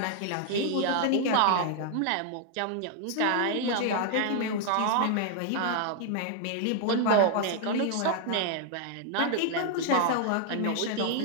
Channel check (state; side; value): different; both; correlation 0.00